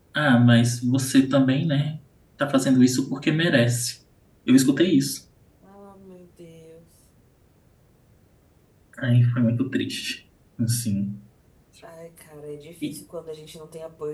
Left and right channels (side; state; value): both; identical; correlation 1.00